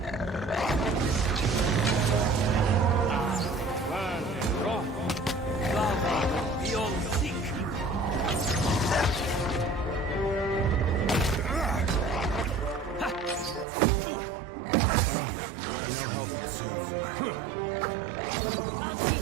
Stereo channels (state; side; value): drops out; left; at 13.7 s